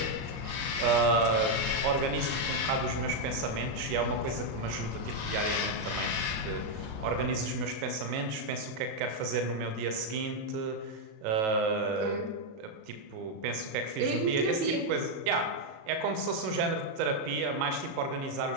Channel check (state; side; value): late; left; 37 ms